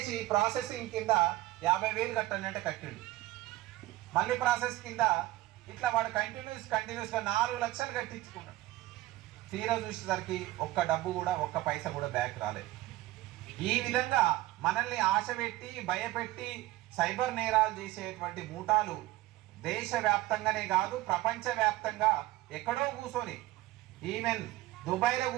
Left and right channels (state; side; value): quieter; left; 17.2 dB